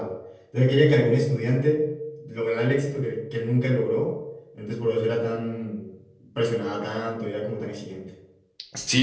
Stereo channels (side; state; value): both; identical; correlation 1.00